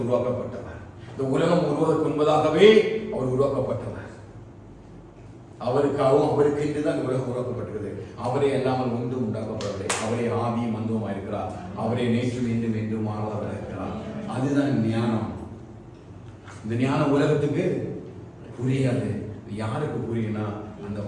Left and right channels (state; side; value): identical; both; correlation 1.00